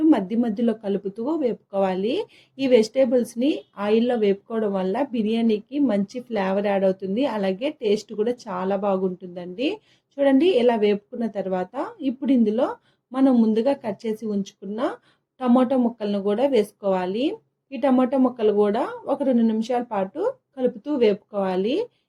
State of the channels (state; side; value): identical; both; correlation 1.00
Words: మధ్యలో కలుపుతూ వేపుకోవాలి. ఈ వెజిటేబుల్స్ని ఆయిల్లో వేపుకోవడం వల్ల బిర్యానీకి మంచి ఫ్లేవర్ యాడ్ అవుతుంది, అలాగే టేస్ట్ కూడా చాలా బాగుంటుందండి. చూడండి, ఇలా వేపుకున్న తర్వాత ఇప్పుడు ఇందులో మనం ముందుగా కట్ చేసి ఉంచుకున్న టమాటో ముక్కలను కూడా వేసుకోవాలి. ఈ టమాటో ముక్కలు కూడా ఒక 2 నిమిషాల పాటు కలుపుతూ వేపుకోవాలి.